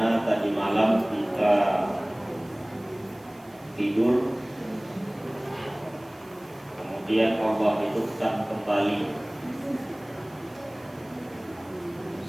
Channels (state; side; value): noise; right; hiss, 28 dB below the sound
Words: tadi malam kita tidur, kemudian Allah hidupkan kembali,